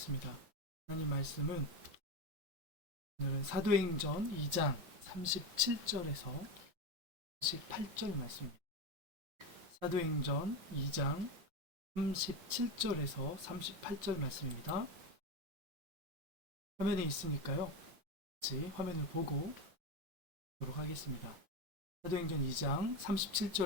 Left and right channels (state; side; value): late; left; 5.9 ms